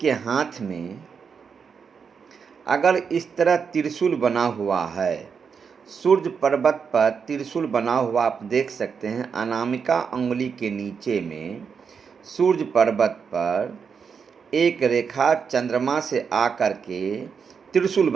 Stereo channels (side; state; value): left; quieter; 6.2 dB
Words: हाथ में अगर इस तरह त्रिशूल बना हुआ है, सूर्य पर्वत पर त्रिशूल बना हुआ आप देख सकते हैं। अनामिका अंगुली के नीचे में सूर्य पर्वत पर एक रेखा चंद्रमा से आकर के त्रिशूल